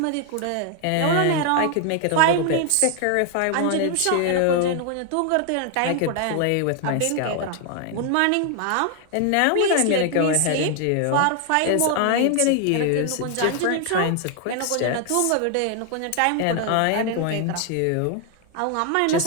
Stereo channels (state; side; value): different; both; correlation 0.00